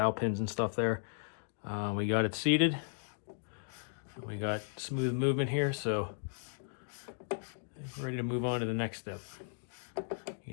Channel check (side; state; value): right; silent; digital silence